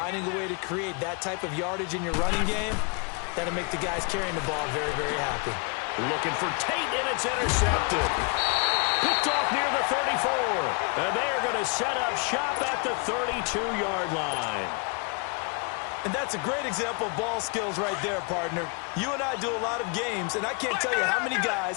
a way to create that type of yardage in your running game, that'll make the guys carrying the ball very, very happy. Looking for Tate, and it's intercepted. Picked off near the 34. And they're going to set up shop at the 32-yard line. And that's a great example of ball skills right there, partner. You and I do a lot of games, and I can't tell you how many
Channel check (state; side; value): quieter; right; 34.9 dB